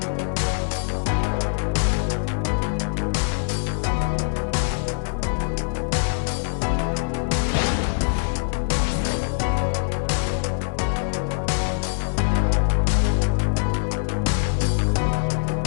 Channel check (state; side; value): silent; right; 63 dB below the other